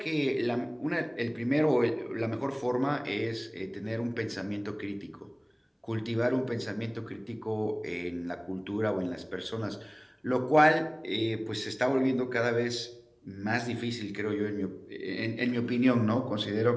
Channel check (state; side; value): identical; both; correlation 1.00